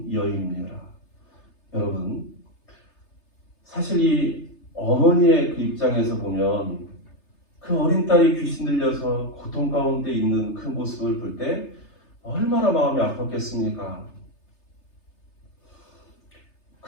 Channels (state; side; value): late; right; 3.3 ms